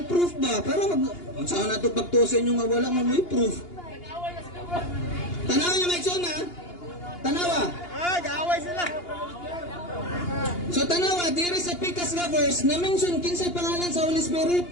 proof ba para saan nato pagtusin yung nga wala man may proof. Tanawa niyo maigsoon ha. Tanawa. Gaaway sila. So tanawa, diri sa pikas nga verse, na-mention kinsay pangalan sa Holy Spirit.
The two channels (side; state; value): right; late; 2.8 ms